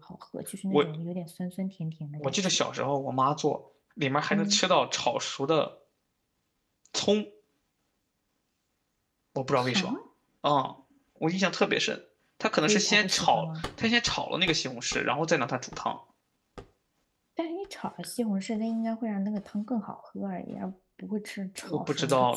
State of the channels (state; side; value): identical; both; correlation 1.00